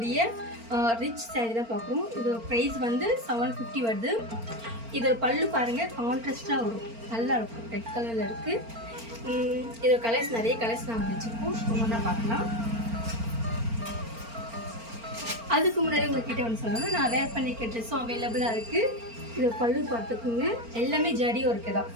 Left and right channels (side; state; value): left; late; 4.4 ms